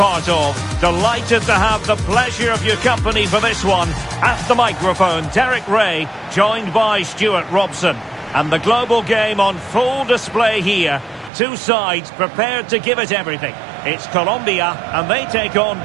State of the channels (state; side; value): drops out; left; at 11.3 s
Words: of. Delighted to have the pleasure of your company for this one. At the microphone, Derek Ray, joined by Stuart Robson. And the global game on full display here. Two sides prepared to give it everything. It's Colombia, and they take on